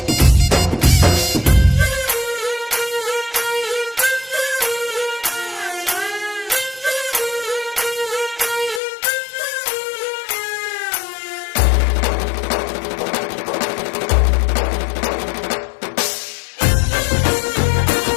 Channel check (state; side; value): drops out; right; at 8.8 s